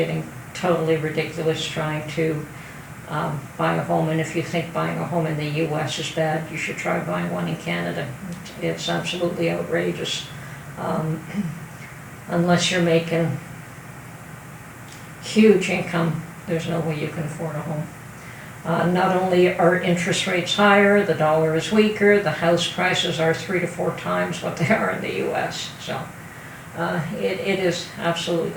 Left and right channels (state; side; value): identical; both; correlation 1.00